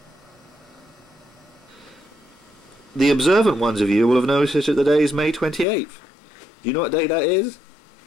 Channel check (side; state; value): right; drops out; at 5.7 s